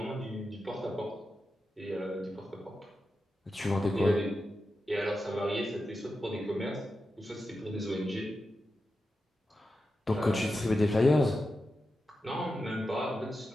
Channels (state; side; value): normal; both; correlation 0.90